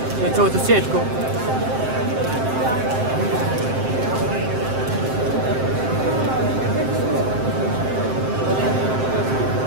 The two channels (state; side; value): late; left; 7.7 ms